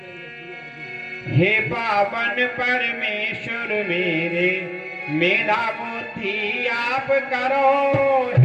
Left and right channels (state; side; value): identical; both; correlation 1.00